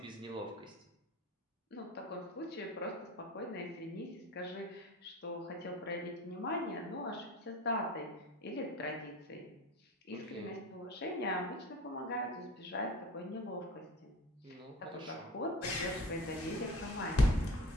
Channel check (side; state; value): both; normal; correlation 0.38